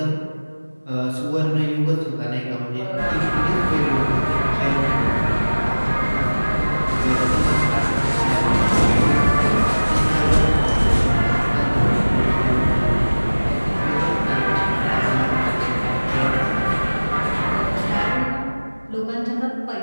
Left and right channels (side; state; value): both; inverted; correlation -1.00